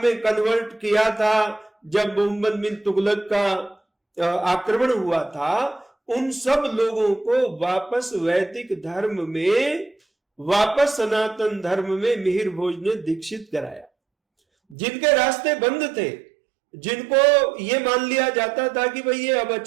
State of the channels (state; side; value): drops out; left; at 14.8 s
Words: कन्वर्ट किया था जब मोहम्मद बिन तुगलक का आक्रमण हुआ था, उन सब लोगों को वापस वैदिक धर्म में, वापस सनातन धर्म में मिहिर भोज ने दीक्षित कराया। जिनके रास्ते बंद थे, जिनको ये मान लिया जाता था कि भाई ये अब